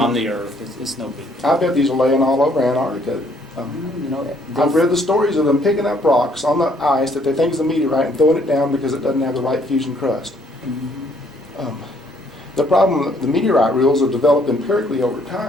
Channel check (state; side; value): normal; both; correlation 0.65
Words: on the Earth, it's no big deal. I bet these are laying all over Antarctica. I've read the stories of them picking up rocks on the ice that they think is a meteorite and throwing it down because it doesn't have the right fusion crust. Mhm. The problem, the meteorite rules have developed empirically over